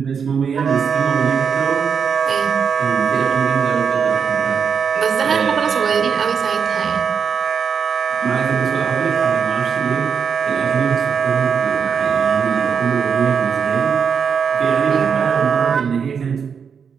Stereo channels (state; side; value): quieter; left; 6.7 dB